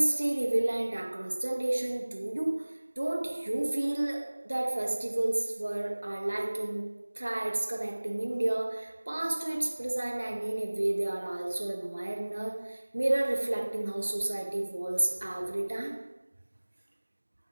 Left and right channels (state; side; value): inverted; both; correlation -1.00